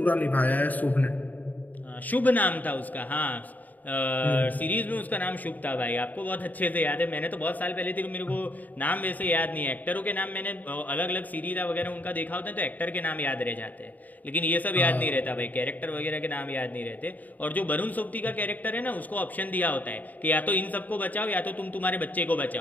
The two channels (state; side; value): late; right; 0.080 ms